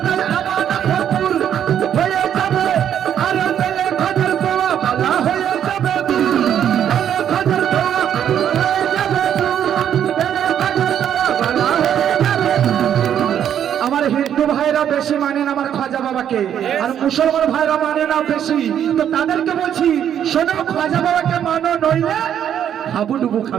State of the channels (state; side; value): quieter; left; 9.6 dB